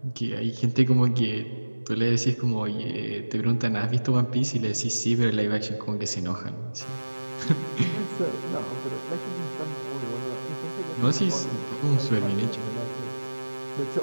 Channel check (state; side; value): inverted; both; correlation -1.00